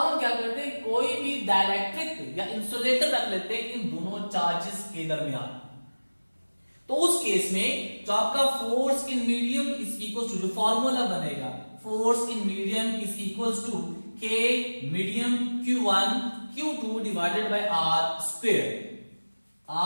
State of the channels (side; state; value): both; inverted; correlation -1.00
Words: हम क्या करते हैं, कोई भी डाइलेक्ट्रिक या इंसुलेटर रख लेते हैं इन दोनों चार्जेस के दरमियान। तो उस केस में जो आपका force in medium is equal to, जो फॉर्मूला बनेगा force in medium is equal to K medium Q1 Q2 divided by R square.